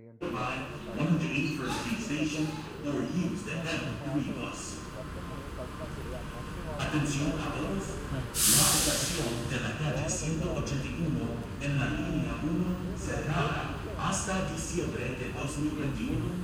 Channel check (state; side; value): identical; both; correlation 1.00